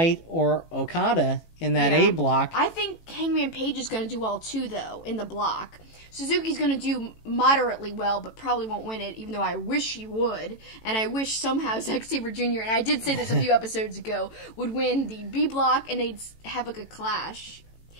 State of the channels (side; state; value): right; late; 18 ms